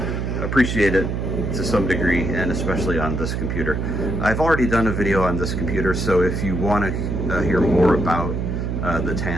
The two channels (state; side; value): noise; right; hum, 2 dB below the sound